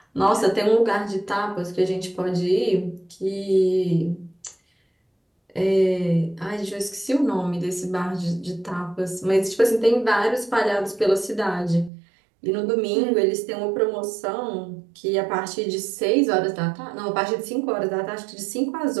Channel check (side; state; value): left; drops out; at 11.9 s